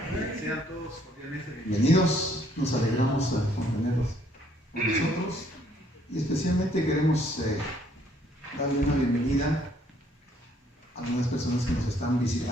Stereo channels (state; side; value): normal; both; correlation 0.65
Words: Sean todos cordialmente Bienvenidos. Nos alegramos con tenerlos con nosotros y especialmente queremos darle una bienvenida a algunas personas que nos están